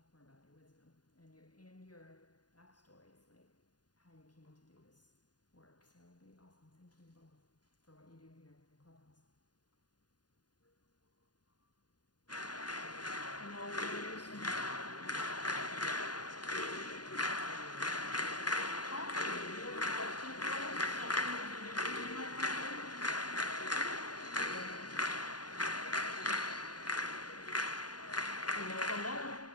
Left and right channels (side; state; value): right; late; 0.70 ms